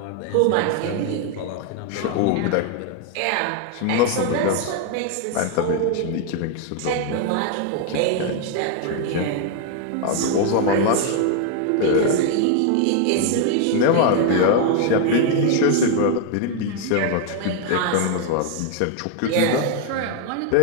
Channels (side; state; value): both; different; correlation 0.00